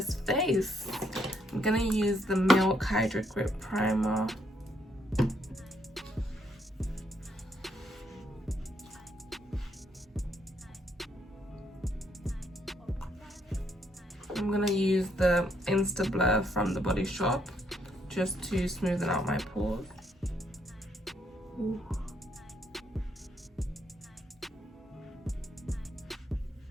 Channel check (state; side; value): normal; both; correlation 0.73